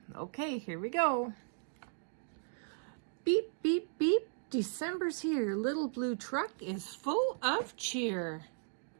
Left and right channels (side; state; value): left; silent; digital silence